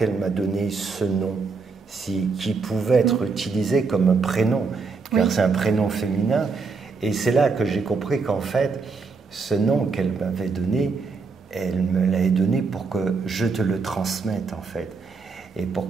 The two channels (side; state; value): left; quieter; 4.6 dB